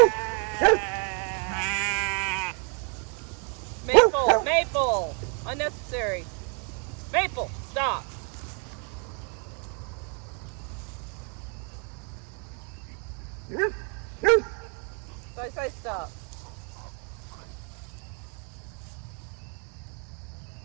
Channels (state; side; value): quieter; left; 38.8 dB